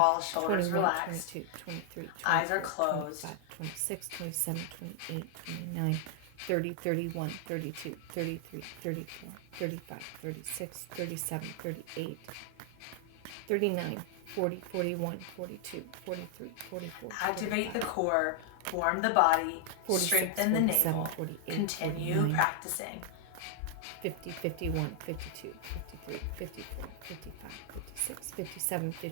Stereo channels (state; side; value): different; both; correlation 0.00